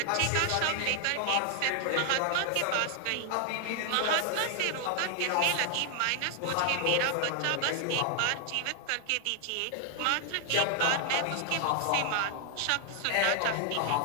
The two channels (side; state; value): both; different; correlation 0.00